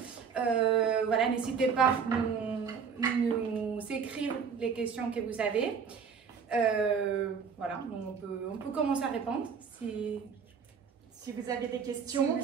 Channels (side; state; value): left; quieter; 6.3 dB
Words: Voilà, n'hésitez pas à nous écrire les questions que vous avez. Voilà, on peut commencer à répondre si vous avez des questions. Si